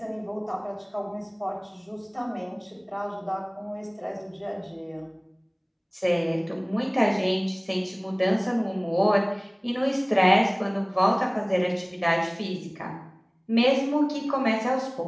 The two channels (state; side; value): identical; both; correlation 1.00